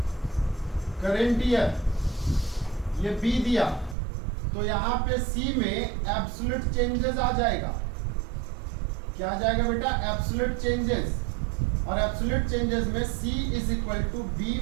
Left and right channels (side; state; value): left; drops out; at 4.0 s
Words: ये बी दिया, तो यहाँ पे सी में एब्सोल्यूट चेंजेस आ जाएगा। क्या आ जाएगा बेटा? Absolute changes. और एब्सोल्यूट चेंजेस में C is equal to B